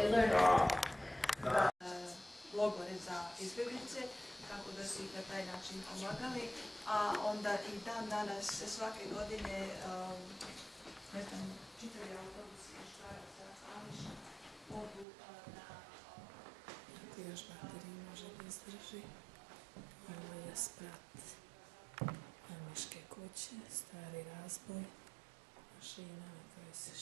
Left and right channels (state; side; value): drops out; left; at 15.1 s